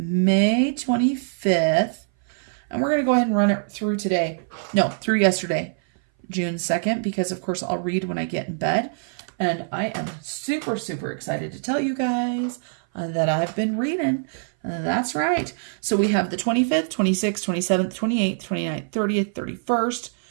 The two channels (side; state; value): left; silent; 59 dB below the other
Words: 25th. And we're going to go ahead and run it through today. No, through yesterday, June 2nd, because of course I'll read when I get in bed. And I am super, super excited to tell you guys that I've been reading. That's right. So we have the 25th, 26th, 27th, 28th, 29th, 30th, 31st,